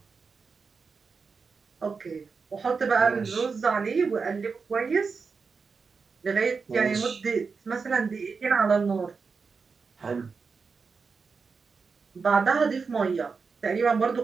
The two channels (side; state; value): left; quieter; 5.0 dB